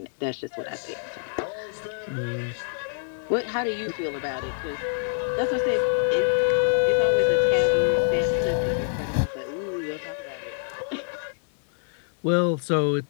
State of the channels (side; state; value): right; silent; 61 dB below the other